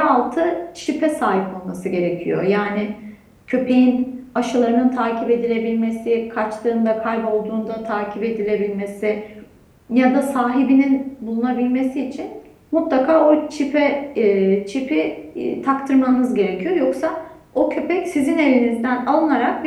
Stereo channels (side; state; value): both; identical; correlation 1.00